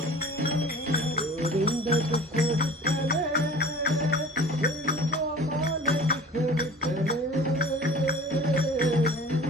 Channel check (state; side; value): normal; both; correlation 0.43